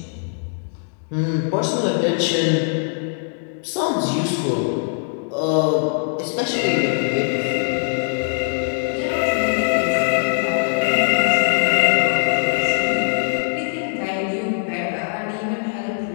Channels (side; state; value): right; silent; digital silence